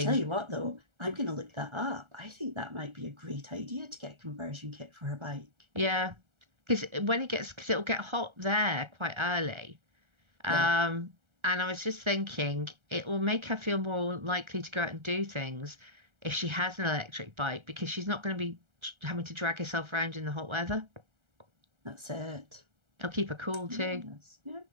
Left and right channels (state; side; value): late; left; 1.3 ms